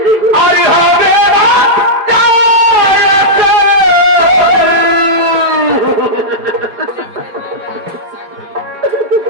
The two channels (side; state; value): left; late; 4.9 ms